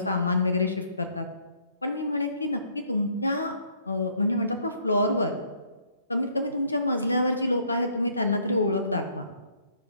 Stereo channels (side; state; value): both; inverted; correlation -0.66